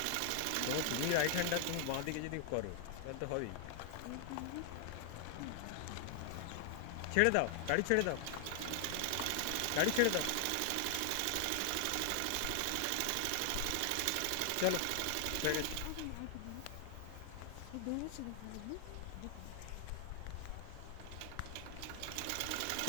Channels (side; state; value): both; different; correlation 0.00